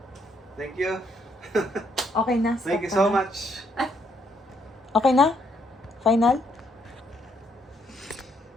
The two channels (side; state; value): both; normal; correlation 0.72